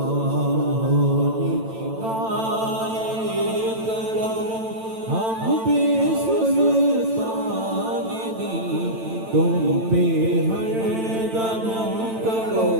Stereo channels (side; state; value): left; late; 9.0 ms